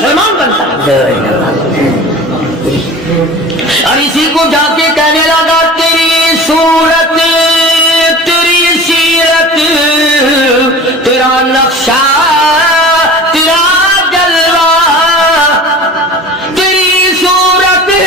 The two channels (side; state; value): both; normal; correlation 0.38